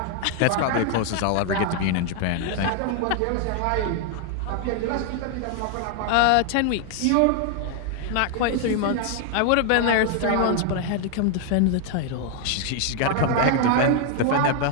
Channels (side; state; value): both; different; correlation 0.00